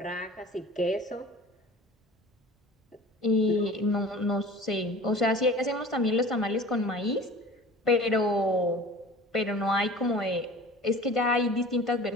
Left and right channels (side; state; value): both; normal; correlation 0.42